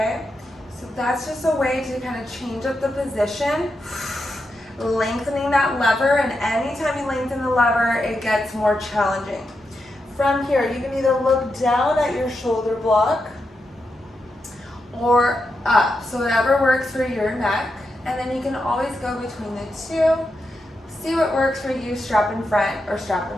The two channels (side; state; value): both; normal; correlation 0.86